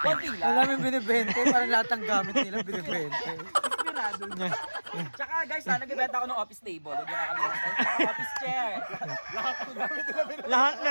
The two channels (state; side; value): inverted; both; correlation -1.00